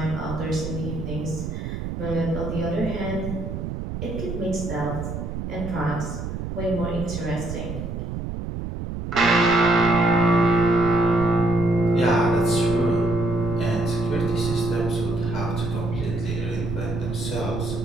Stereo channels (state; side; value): noise; right; rumble, 6 dB below the sound